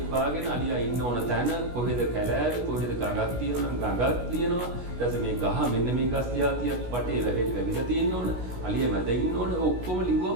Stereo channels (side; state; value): left; late; 16 ms